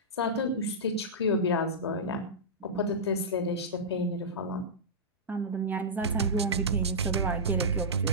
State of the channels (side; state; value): both; normal; correlation -0.13